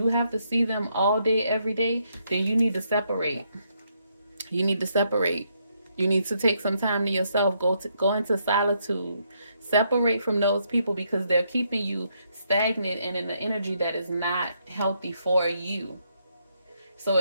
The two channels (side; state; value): both; inverted; correlation -0.75